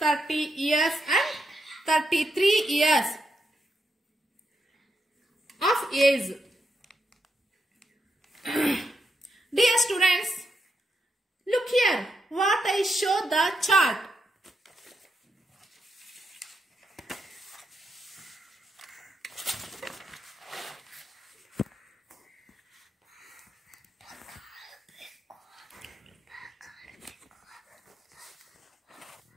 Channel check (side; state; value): both; normal; correlation 0.82